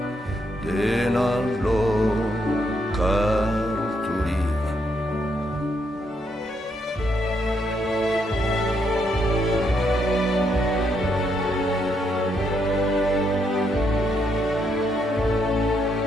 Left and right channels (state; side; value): normal; both; correlation 0.76